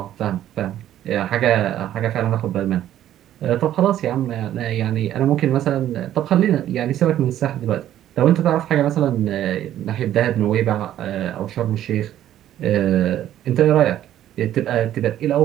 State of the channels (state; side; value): quieter; left; 12.0 dB